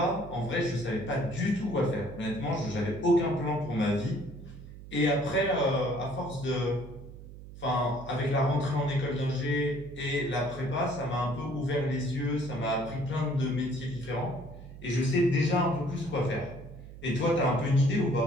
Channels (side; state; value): right; noise; hum, 15 dB below the sound